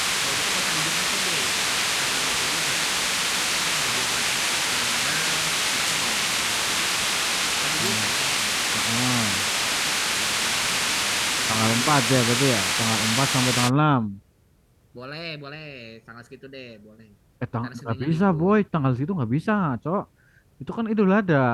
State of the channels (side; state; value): both; identical; correlation 1.00